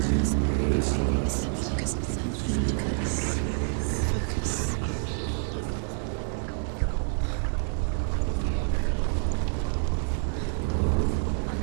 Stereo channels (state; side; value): silent; left; 60 dB below the other